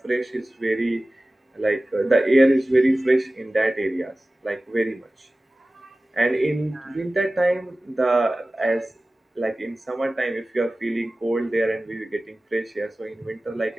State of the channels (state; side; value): normal; both; correlation 0.97